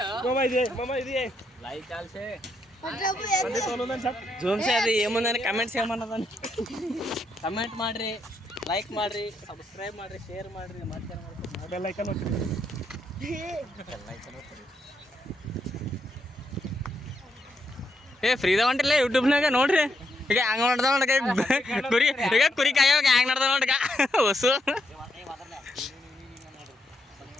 ಮಾಮಾ ಇದೆ ಲೈಕ್ ಆಲ್ಸೆ ಜೂಮ್ ಸೇ ಅದು ಏಮಂದ್ರೆ ಕಮೆಂಟ್ಸ್ ಏಮನ್ನದ ಕಮೆಂಟ್ ಮಾಡ್ರಿ ಲೈಕ್ ಮಾಡ್ರಿ ಸಬ್ಸ್ಕ್ರೈಬ್ ಮಾಡ್ರಿ ಶೇರ್ ಮಾಡ್ರಿ ಬೆಲ್ ಐಕಾನ್ ಒತ್ತಿರಿ ಏ ಫ್ರೀದ ಹೊಂಟಿಲ್ಲ ಯೂಟ್ಯೂಬ್ನಾಗ ನೋಡ್ರಿ ಈಗ ಹಂಗ ಮಾಡ್ದ ನೋಡ್ಕ ಕುರಿ ಈಗ ಕುರಿ ಕಾಯೋಗ ಹ್ಯಾಂಗ ನಡ್ದ ನೋಡ್ಕ ಹೊಸು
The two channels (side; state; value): both; normal; correlation 0.79